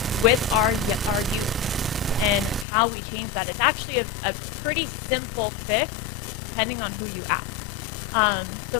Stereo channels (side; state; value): right; drops out; at 2.7 s